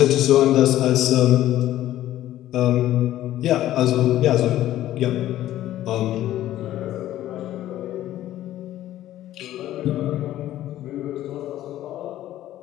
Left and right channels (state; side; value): quieter; right; 13.6 dB